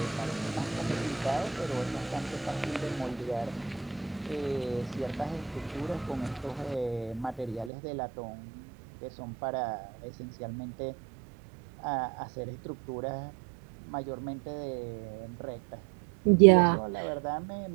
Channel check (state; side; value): drops out; left; at 7.7 s